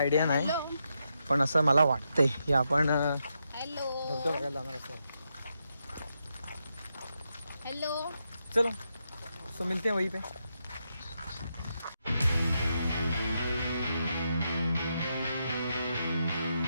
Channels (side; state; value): both; inverted; correlation -0.83